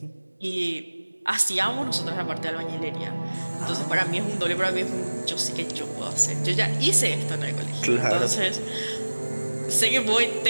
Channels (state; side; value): inverted; both; correlation -1.00